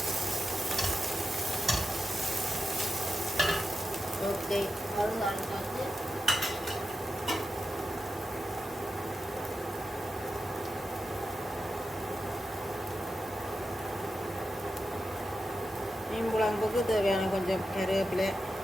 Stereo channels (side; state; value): both; normal; correlation 0.89